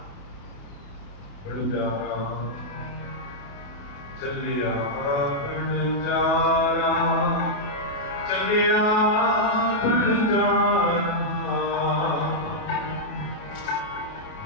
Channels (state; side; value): late; right; 28 ms